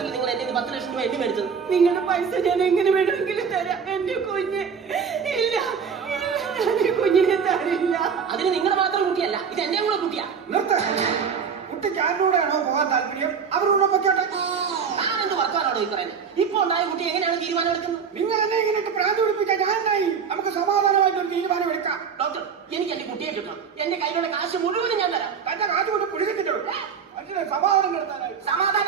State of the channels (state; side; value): quieter; left; 6.5 dB